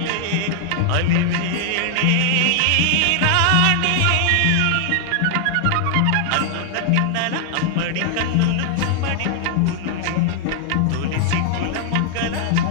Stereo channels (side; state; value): both; different; correlation 0.00